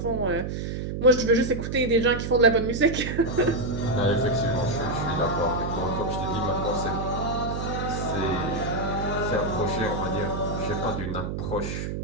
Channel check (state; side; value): noise; right; hum, 4 dB below the sound